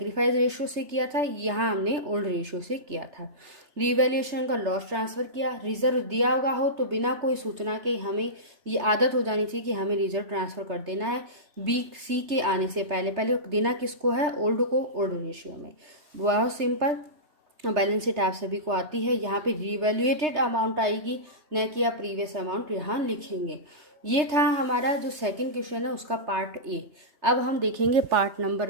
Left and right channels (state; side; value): late; left; 3.3 ms